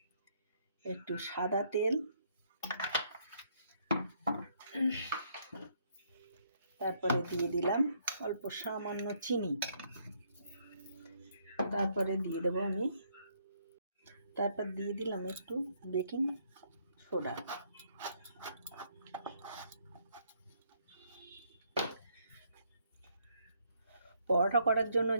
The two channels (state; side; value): inverted; both; correlation -0.70